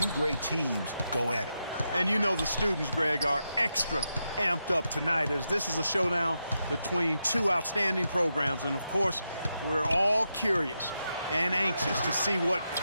great teams go at it. And you know the students, Greg, are extra amped up tonight as this is a showdown between two outstanding programs. And, of course, we're all curious and anxious to see what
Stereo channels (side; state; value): both; inverted; correlation -0.86